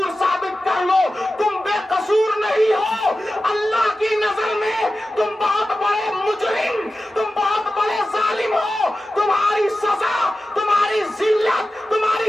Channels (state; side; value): normal; both; correlation 0.94